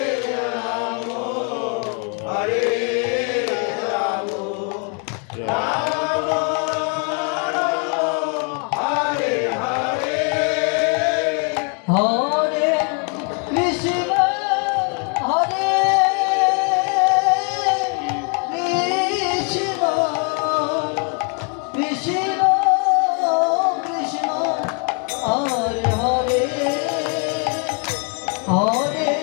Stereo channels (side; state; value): right; quieter; 38.5 dB